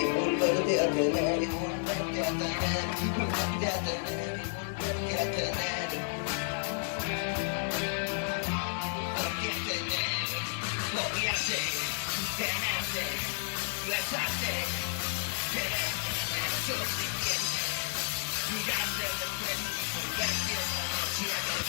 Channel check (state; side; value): silent; right; 57 dB below the other